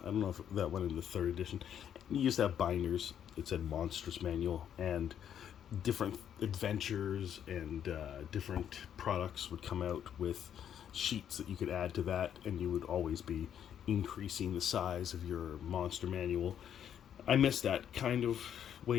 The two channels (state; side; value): quieter; right; 9.3 dB